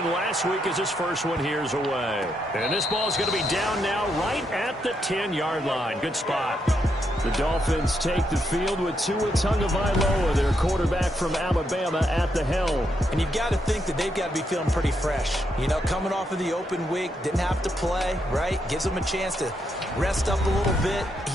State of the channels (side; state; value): both; normal; correlation 0.79